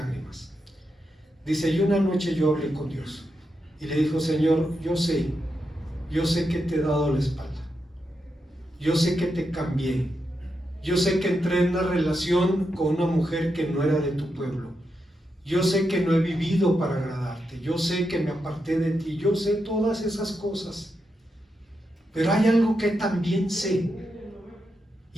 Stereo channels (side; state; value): both; normal; correlation 0.85